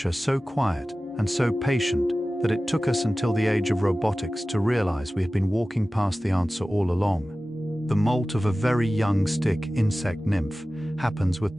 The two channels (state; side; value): normal; both; correlation 0.96